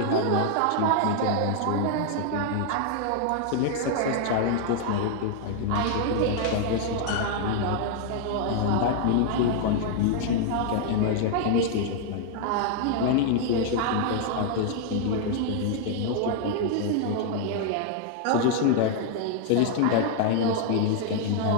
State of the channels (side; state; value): both; different; correlation 0.00